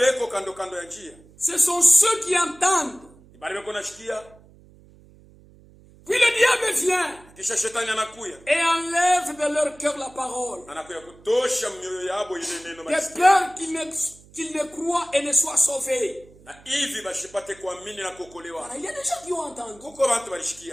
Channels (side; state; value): right; noise; hum, 25 dB below the sound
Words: kando kando ya njia. ce sont ceux qui entendent. Bale beko nashikia, Puis le diable vient kisha shetani anakuya. et enlève de leur cœur la parole, Anakuya kutosha mioyo yabo ile neno de malisikia. peur qu'ils ne croient et ne soient sauvés. Na hivi bashipate kuamini na kuokolewa. Voilà, il y a des gens qui ont entendu, Kuko bantu